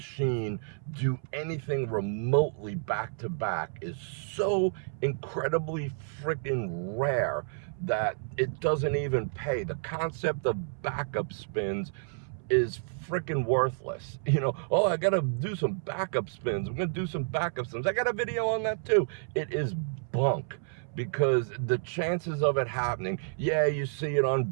do anything remotely back to back is so incredibly freaking rare that it doesn't even pay. The concept of backup spins is freaking worthless. You know, oh, I gotta do some backup spins. I'm gonna do some backup spins. I got a video on that too. It is bunk. Because the chances of it happening, yeah, you see it on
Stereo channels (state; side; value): silent; left; 58 dB below the other